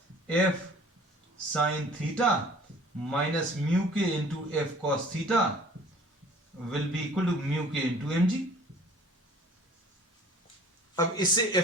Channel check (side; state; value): both; normal; correlation 0.50